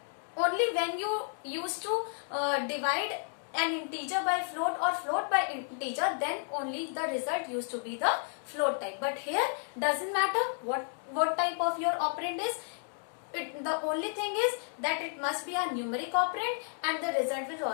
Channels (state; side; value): silent; right; 56 dB below the other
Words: only when you used to divide an integer by float or float by integer, then only the result used to be the float type. But here doesn't matter what type of your operand is. The only thing is that it must be a numeric operand and the result will